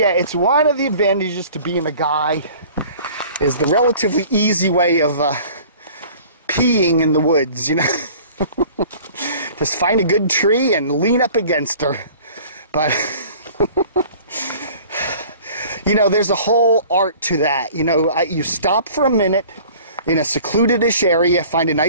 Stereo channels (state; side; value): inverted; both; correlation -0.48